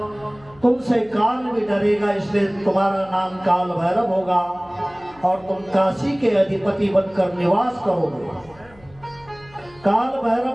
तुमसे काल भी डरेगा इसलिए तुम्हारा नाम काल भैरव होगा और तुम काशी के अधिपति बनकर निवास करोगे। काल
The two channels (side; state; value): left; noise; hum, 26 dB below the sound